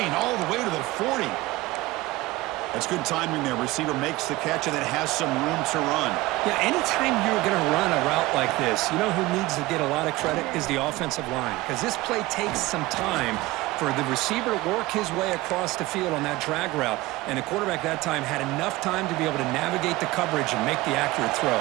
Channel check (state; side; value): quieter; left; 19.4 dB